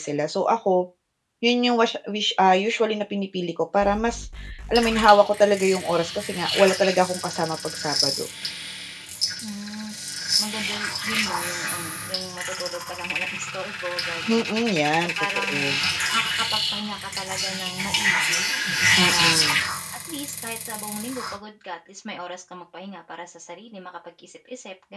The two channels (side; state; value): both; identical; correlation 1.00